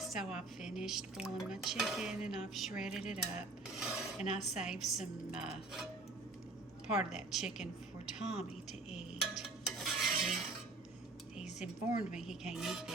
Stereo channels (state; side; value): quieter; left; 3.3 dB